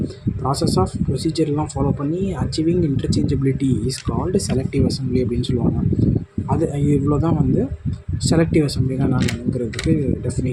ப்ராசஸ் ஆஃப் ப்ரொசீஜர்லாம் ஃபாலோ பண்ணி achieving interchangeability is called selective assembly அப்படின்னு சொல்லுவாங்க. அது இவ்வளோ தான் வந்து செலக்டிவ் அசம்பிளினா என்னங்கிறதுக்கு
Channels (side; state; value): both; identical; correlation 1.00